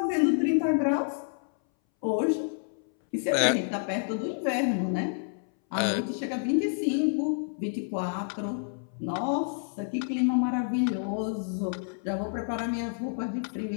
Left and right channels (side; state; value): right; silent; 59 dB below the other